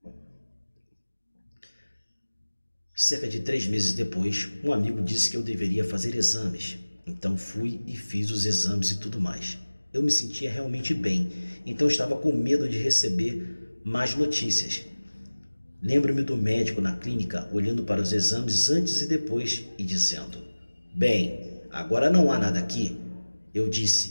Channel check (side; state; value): both; inverted; correlation -1.00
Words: Cerca de 3 meses depois, um amigo disse que eu deveria fazer exames. Então fui e fiz os exames e tudo mais. Eu me sentia realmente bem, então estava com medo de receber mais notícias. Lembro-me do médico na clínica olhando para os exames antes e depois e dizendo: bem, agora não há nada aqui. Eu